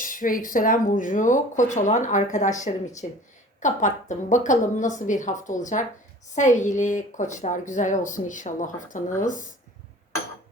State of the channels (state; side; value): normal; both; correlation 0.45